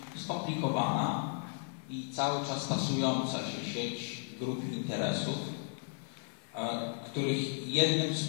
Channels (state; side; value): silent; right; 55 dB below the other